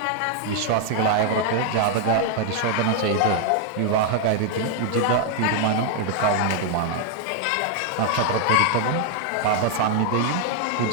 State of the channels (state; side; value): different; both; correlation 0.00